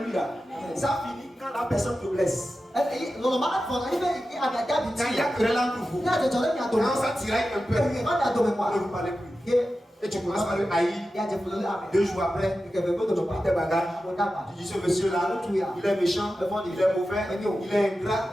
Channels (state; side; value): normal; both; correlation 0.92